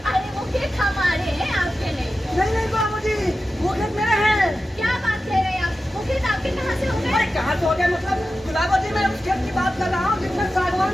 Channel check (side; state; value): both; normal; correlation 0.93